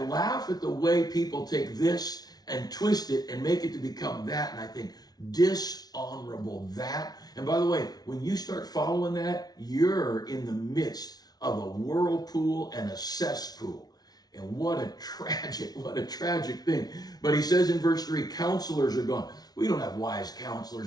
at the way people take this and twist it and make it to become that. And I think, dishonorable, that. And by the way, when you start following that, you're in the midst of a whirlpool and a cesspool. And what a tragic thing. But he says in verse 3, counselors are gone. We don't have wise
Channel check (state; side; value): late; right; 0.19 ms